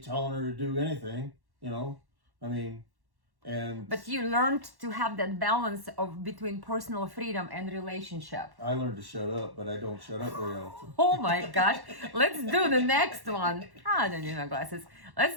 her to do anything, I mean. But you learned to have that balance of between personal freedom and relationship. I learned to shut up, but I don't shut up very often. Oh my gosh. Let's do the next one. I don't need my glasses. Let's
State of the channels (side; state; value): left; late; 1.1 ms